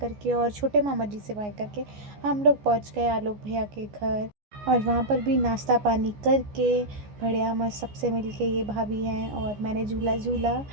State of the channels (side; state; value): left; late; 14 ms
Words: और छोटे मामा जी से बाय करके हम लोग पहुँच गए आलोक भैया के घर। और वहाँ पर भी नाश्ता पानी करके बढ़िया मस्त सबसे मिल के, ये भाभी हैं और मैंने झूला झूला